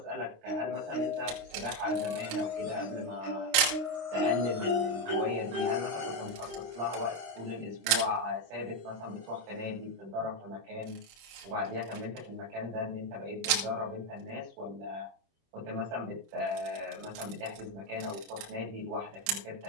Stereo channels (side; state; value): left; late; 27 ms